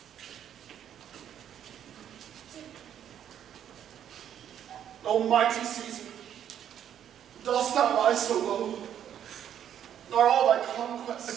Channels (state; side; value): quieter; left; 9.8 dB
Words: Almighty Caesar, dost thou lie so low? Are all thy